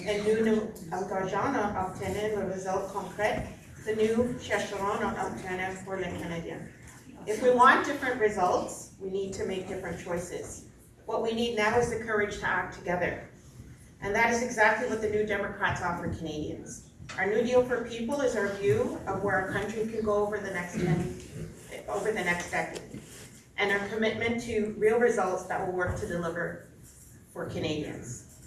et nous nous engageons à obtenir le résultat concret que nous chercherons à obtenir pour les Canadiens. If we want different results, we need to make different choices. What we need now is the courage to act together. And that is exactly what the New Democrats offer Canadians. Our New Deal for People is our view of where our country can go over the next decade. And our commitment to real results that will work to deliver for Canadians.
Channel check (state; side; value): identical; both; correlation 1.00